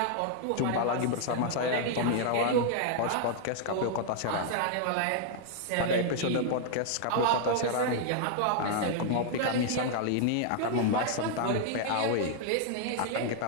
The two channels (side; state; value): both; different; correlation 0.00